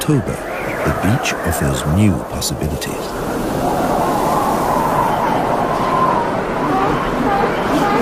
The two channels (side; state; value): both; identical; correlation 1.00